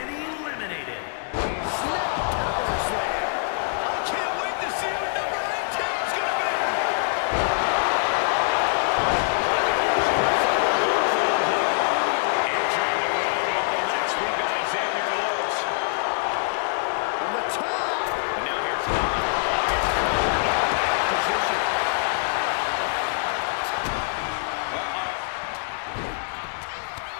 eliminated. Snap power slam. I can't wait to see who number 18 is going to be. Entering the Royal Rumble match, we've got Xavier Woods. On the top. And now here's position.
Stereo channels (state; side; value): silent; right; digital silence